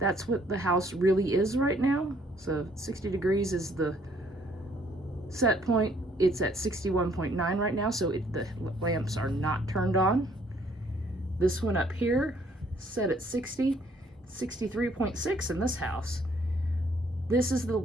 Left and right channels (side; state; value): both; normal; correlation 0.64